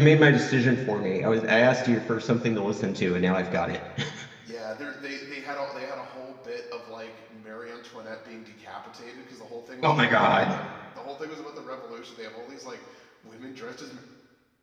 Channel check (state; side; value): identical; both; correlation 1.00